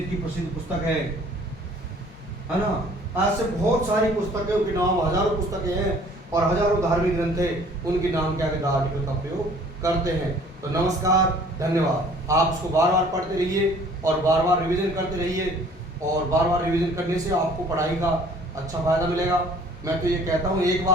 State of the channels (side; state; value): both; normal; correlation 0.53